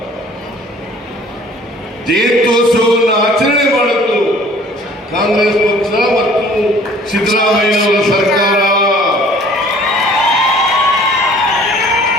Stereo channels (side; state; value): both; normal; correlation 0.53